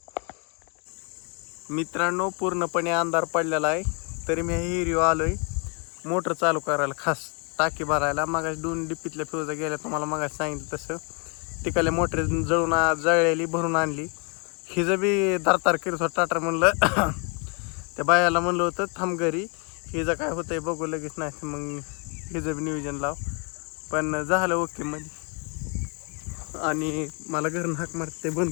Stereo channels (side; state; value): right; quieter; 35.1 dB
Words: मित्रांनो पूर्णपणे अंधार पडलेला आहे तरी मी हिरीव आलोय मोटर चालू करायला, खास टाकी भरायला. मागाशी 2 डिप्पीतल्या फ्यूजा गेल्या तुम्हाला मागाशी सांगितलं तसं. तिकडल्या मोटर जळलेली भरून आणली. हिचं बी दारतार करत होतं टाटर. म्हणलं त्या बायाला म्हणलं होतं थांब घरी, हिचं काय होतंय बघू लगेच, नाही मग हिचं बी नियोजन लाव. पण झालं ओके मध्ये. आणि मला घरून हाक मारते बंद